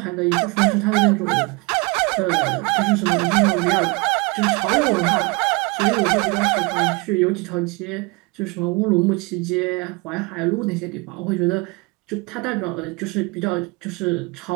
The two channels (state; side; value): quieter; left; 27.2 dB